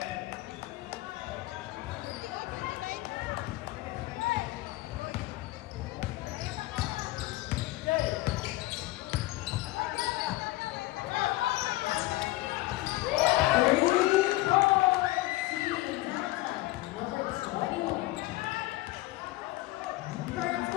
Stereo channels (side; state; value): right; quieter; 18.8 dB